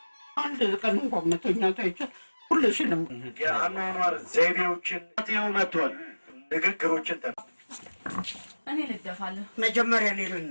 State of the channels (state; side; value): inverted; both; correlation -1.00